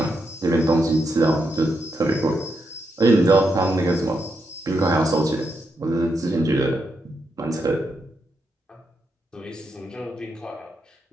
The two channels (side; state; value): both; normal; correlation 0.82